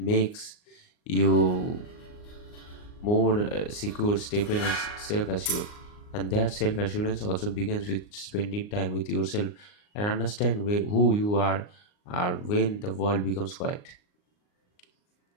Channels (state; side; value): late; right; 39 ms